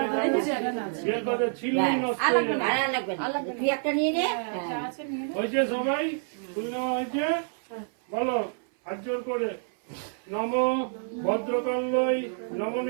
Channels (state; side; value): silent; left; 59 dB below the other